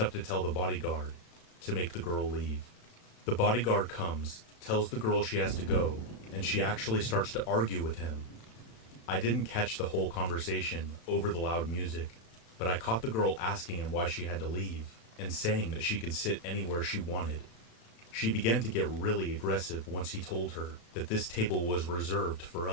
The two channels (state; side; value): late; right; 35 ms